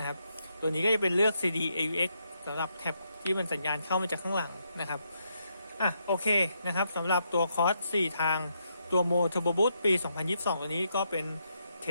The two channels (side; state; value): both; inverted; correlation -0.79